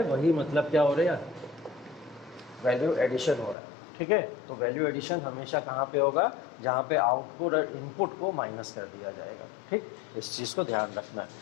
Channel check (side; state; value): right; drops out; at 3.6 s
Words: वही मतलब क्या हो रहा है, वैल्यू एडिशन हो रहा है। ठीक है, तो वैल्यू एडिशन हमेशा कहाँ पे होगा, जहाँ पे आउटपुट और इनपुट को माइनस कर दिया जाएगा। ठीक, इस चीज़ को ध्यान रखना